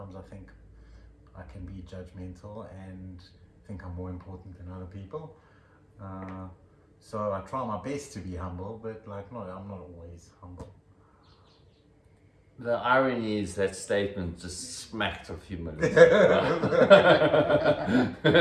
I think I can be judgmental and think I'm more important than other people. So I try my best to be humble, but I'm not always humble. The irony is that statement just smacked of humility.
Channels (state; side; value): identical; both; correlation 1.00